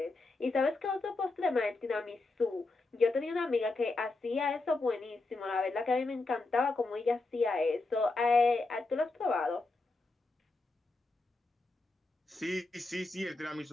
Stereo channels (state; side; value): quieter; right; 3.4 dB